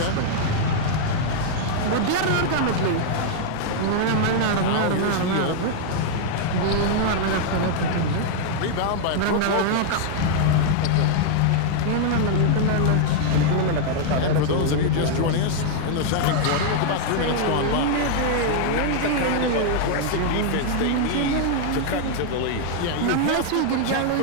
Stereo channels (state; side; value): different; both; correlation 0.00